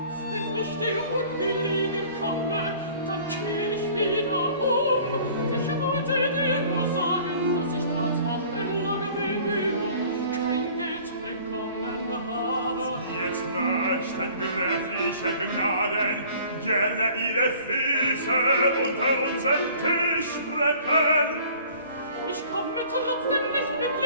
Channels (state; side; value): inverted; both; correlation -0.50